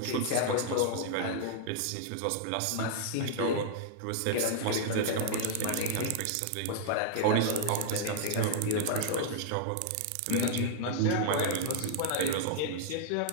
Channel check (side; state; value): both; different; correlation -0.01